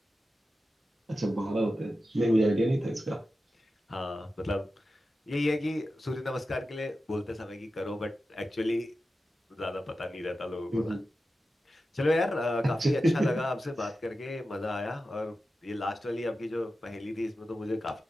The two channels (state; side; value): normal; both; correlation 0.92